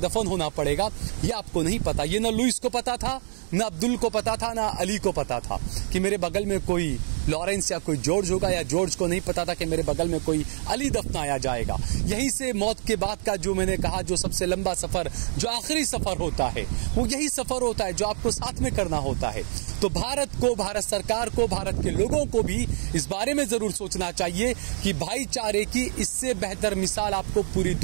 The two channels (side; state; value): left; silent; 61 dB below the other